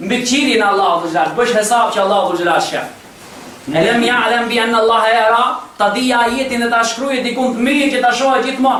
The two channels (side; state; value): both; identical; correlation 1.00